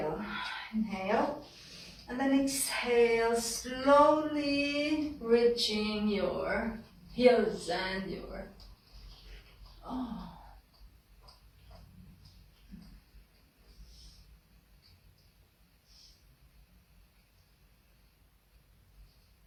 Inhale. And then exhale, slowly reaching your heels and your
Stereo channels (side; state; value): both; identical; correlation 1.00